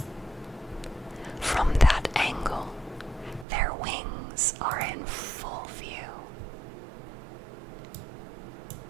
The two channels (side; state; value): left; drops out; at 3.5 s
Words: From that angle, their wings are in full view.